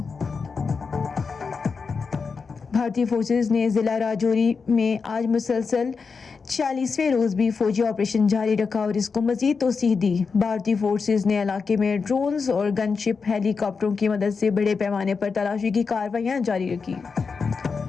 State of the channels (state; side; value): quieter; right; 5.1 dB